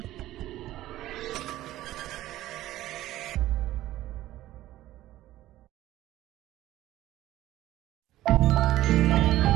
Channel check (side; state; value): left; quieter; 15.0 dB